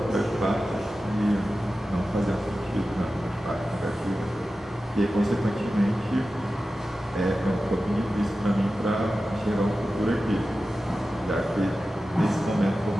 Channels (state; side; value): normal; both; correlation 0.94